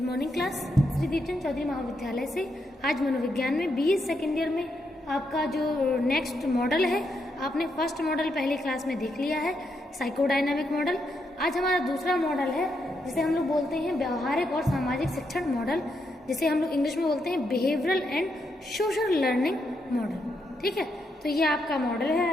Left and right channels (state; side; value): normal; both; correlation 0.80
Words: class. Shri Deepchand Chaudhary महाविद्यालय से आज मनोविज्ञान में बीए सेकेंड ईयर में आपका जो नेक्स्ट मॉडल है, आपने फर्स्ट मॉडल पहली क्लास में देख लिया है, साइकोडायनामिक मॉडल। आज हमारा दूसरा मॉडल है जिसे हम लोग बोलते हैं व्यवहारिक और सामाजिक शिक्षण मॉडल, जिसे हम लोग इंग्लिश में बोलते हैं behavioural and social learning model. ठीक है, तो ये आपका मॉडल है